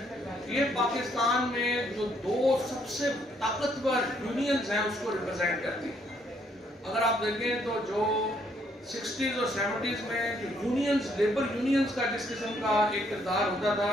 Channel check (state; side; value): normal; both; correlation 0.70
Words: یہ پاکستان میں جو 2 سب سے طاقتور یونینز ہیں اس کو ریپرزینٹ کرتی ہیں۔ اگر آپ دیکھیں تو جو 60s اور 70s میں جو یونینز، لیبر یونینز کا جس قسم کا ایک کردار ہوتا